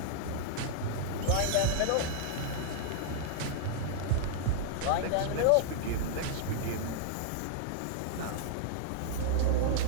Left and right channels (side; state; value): both; different; correlation -0.01